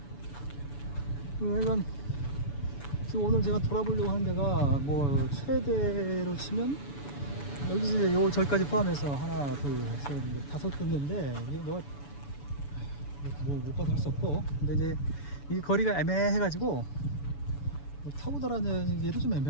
이건 지금 오늘 제가 돌아보려고 하는 데가 뭐 최대로 치면 여기 이제 요 절까지 포함해서 하나, 둘, 셋, 넷, 5군데인데 이게 뭐 못 봐도 할 수 없고, 근데 이제 이 거리가 애매해가지고 뭐 타고 다니기도 좀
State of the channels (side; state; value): right; late; 7.0 ms